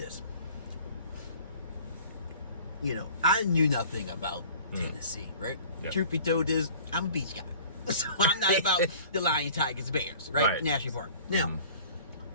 I knew nothing about Tennessee, right? Yep. Truth be told is, I'm a beach guy. So I'm not about the Lions, Tigers, Bears, right? National Park. Now,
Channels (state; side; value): inverted; both; correlation -0.47